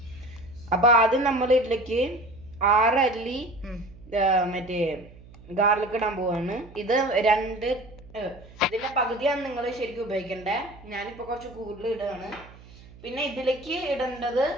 അപ്പോൾ ആദ്യം നമ്മൾ ഇതിലേക്ക് 6 അല്ലി മറ്റേ ഗാർലിക് ഇടാൻ പോവാണ്. ഇത് ഇതിന്റെ പകുതിയാണ് നിങ്ങൾ ശരിക്കും ഉപയോഗിക്കേണ്ടത്. ഞാനിപ്പോൾ കുറച്ച് കൂടുതൽ ഇടുകയാണ്. പിന്നെ ഇതിലേക്ക് ഇടേണ്ടത്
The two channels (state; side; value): noise; right; hum, 21 dB below the sound